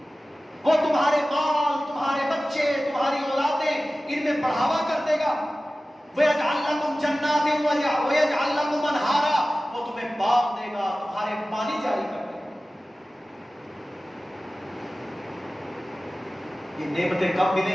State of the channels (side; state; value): both; normal; correlation 0.96